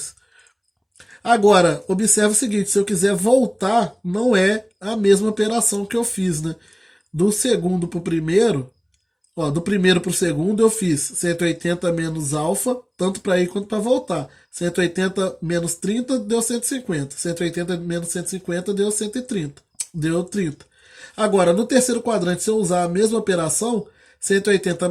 Agora, observe o seguinte, se eu quiser voltar, não é a mesma operação que eu fiz, né? Do segundo para o primeiro, ó, do primeiro para o segundo eu fiz 180 menos alfa, tanto para ir quanto para voltar. 180 menos 30 deu 150. 180 menos 150 deu 130. Deu 30. Agora, no terceiro quadrante, se eu usar a mesma operação, 180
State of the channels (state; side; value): identical; both; correlation 1.00